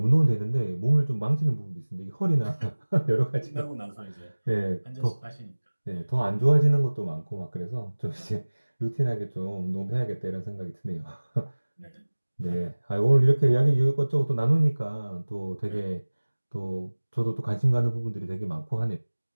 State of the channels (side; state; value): both; inverted; correlation -1.00